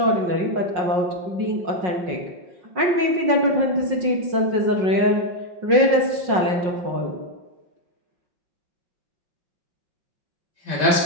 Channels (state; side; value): late; left; 5.5 ms